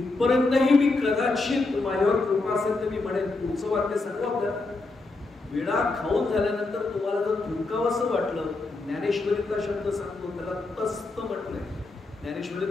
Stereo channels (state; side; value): quieter; right; 3.4 dB